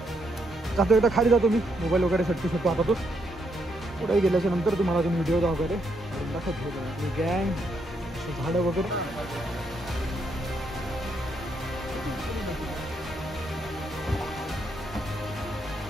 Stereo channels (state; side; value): normal; both; correlation 0.76